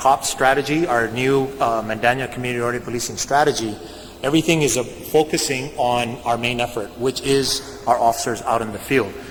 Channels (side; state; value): both; identical; correlation 1.00